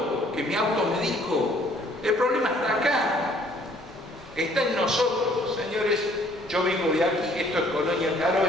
que mi auto me dijo, el problema está acá, está en nosotros. Señores, yo vengo de aquí, esto es Colonia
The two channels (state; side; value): normal; both; correlation 0.60